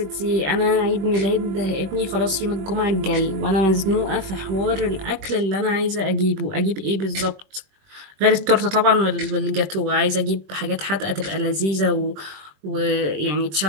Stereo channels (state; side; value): late; left; 21 ms